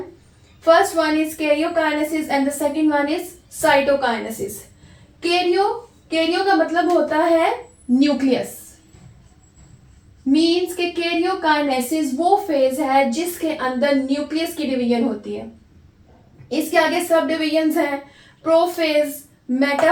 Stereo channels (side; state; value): both; identical; correlation 1.00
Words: First one is karyokinesis and the second one is cytokinesis. Cairo का मतलब होता है न्यूक्लियस, मींस के कैरियोकाइनेसिस वो फेज है जिसके अंदर न्यूक्लियस की डिवीजन होती है। इसके आगे सब डिवीजन्स हैं prophase,